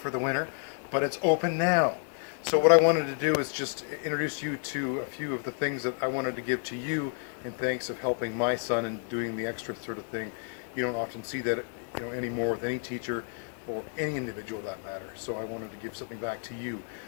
the winter, but it's open now. So what I wanted to do is just introduce you to a few of the things that I wanted to give to you in thanks of helping my son and doing the extra sort of thing. You don't often see that, anymore with any teacher or any individual that matter. So I wanted to give something back to you.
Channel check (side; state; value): right; silent; 57 dB below the other